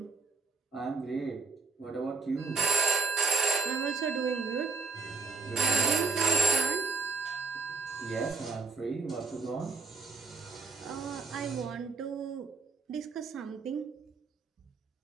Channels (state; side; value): quieter; left; 4.2 dB